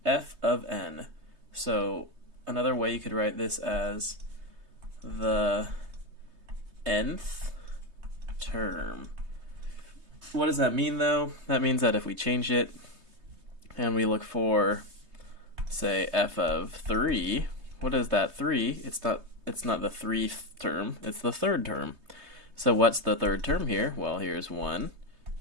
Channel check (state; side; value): late; left; 3.2 ms